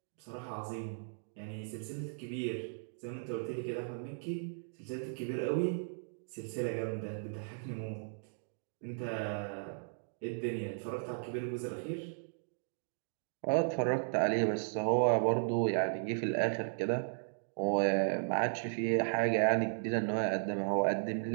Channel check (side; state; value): left; silent; digital silence